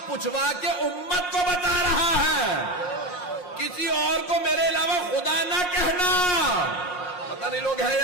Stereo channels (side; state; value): right; late; 5.6 ms